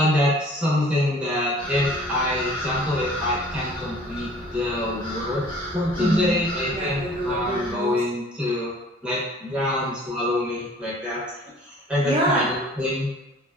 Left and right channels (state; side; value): normal; both; correlation 0.50